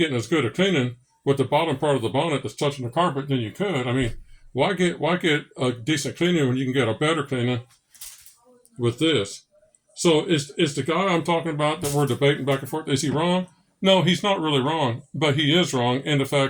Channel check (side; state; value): both; identical; correlation 1.00